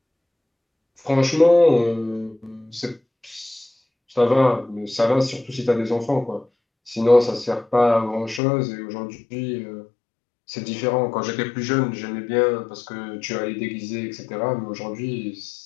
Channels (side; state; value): right; drops out; at 8.4 s